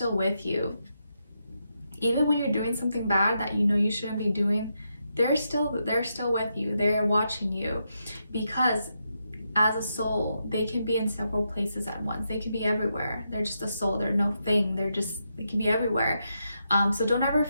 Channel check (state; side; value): inverted; both; correlation -0.83